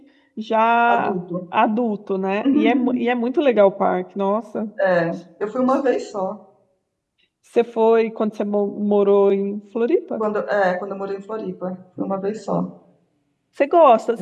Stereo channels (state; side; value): identical; both; correlation 1.00